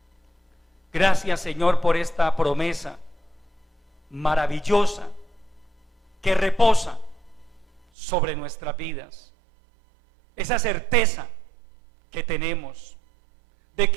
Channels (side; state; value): left; drops out; at 7.8 s